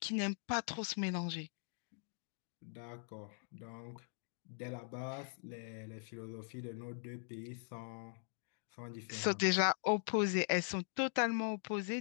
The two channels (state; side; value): silent; right; digital silence